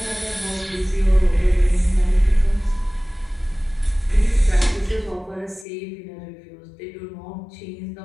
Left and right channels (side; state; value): right; drops out; at 5.7 s